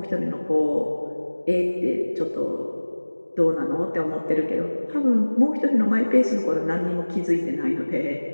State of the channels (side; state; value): both; inverted; correlation -1.00